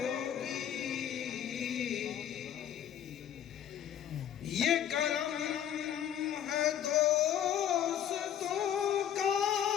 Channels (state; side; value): quieter; right; 10.0 dB